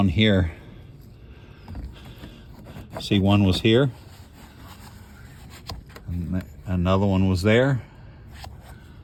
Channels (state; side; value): identical; both; correlation 1.00